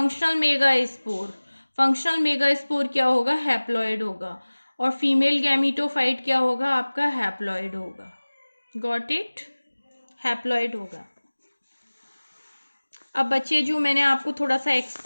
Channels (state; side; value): inverted; both; correlation -1.00